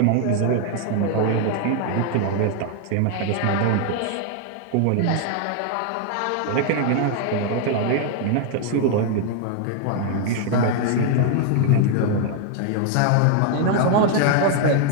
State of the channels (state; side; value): different; both; correlation 0.00